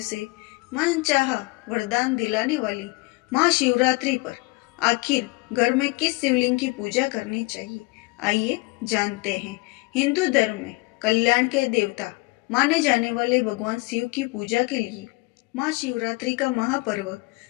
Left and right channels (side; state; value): right; quieter; 25.1 dB